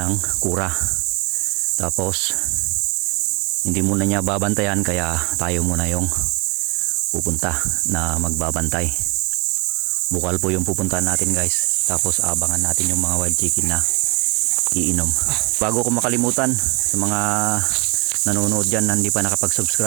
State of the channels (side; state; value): left; quieter; 29.3 dB